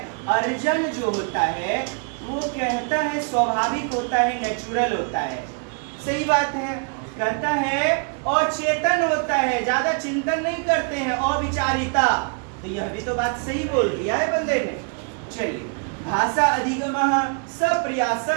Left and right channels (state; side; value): quieter; left; 39.2 dB